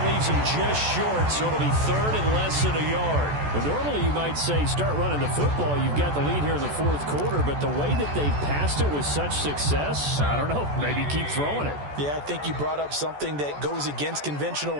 leaves him just short, so it'll be 3rd and less than a yard. Well, normally you might say start running the football. You've got the lead here in the 4th quarter, but the way that they've passed it with such success, I don't know, maybe keep throwing it. Yeah, I think you brought up something that goes against conventional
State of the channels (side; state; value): left; late; 14 ms